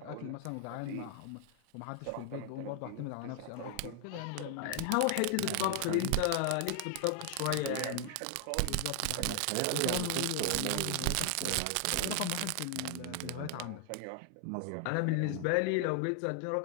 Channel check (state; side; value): different; both; correlation 0.00